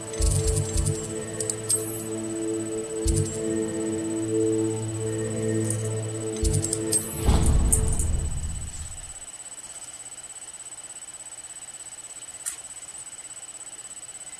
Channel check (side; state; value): both; identical; correlation 1.00